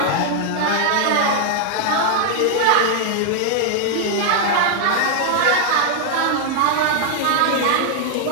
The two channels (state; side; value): different; both; correlation 0.00